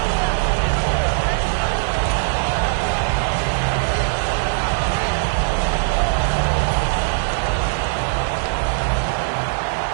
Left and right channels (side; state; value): left; silent; 63 dB below the other